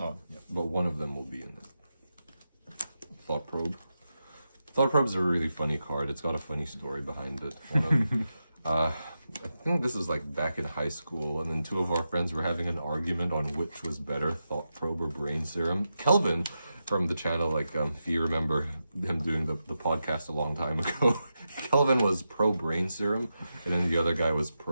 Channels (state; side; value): inverted; both; correlation -0.89